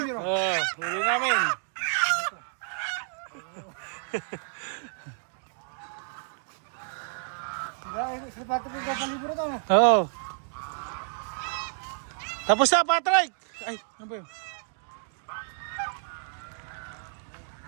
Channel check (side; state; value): left; silent; digital silence